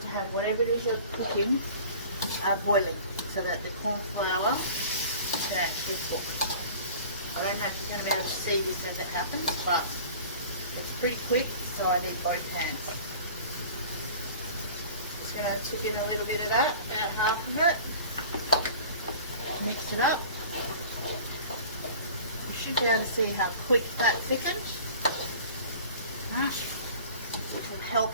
to have whatever it is you're cooking boiling, so that the corn flour can actually cook. I don't know if you're going to be able to see this as it happens, but it's pretty quick, so I need both hands. Just going to tip in a little bit of that, about half of it. Mix it up. You should be able to see how quick that thickens. Right. Which will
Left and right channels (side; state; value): both; inverted; correlation -0.43